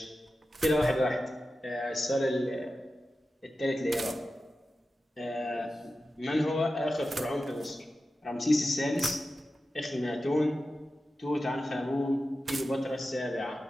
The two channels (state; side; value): normal; both; correlation 0.93